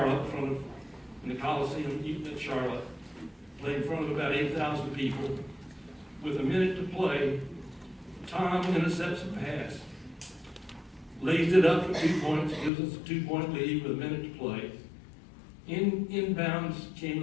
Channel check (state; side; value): drops out; right; at 12.7 s